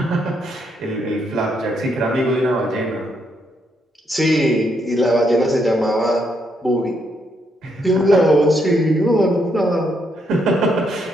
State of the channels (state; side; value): normal; both; correlation 0.76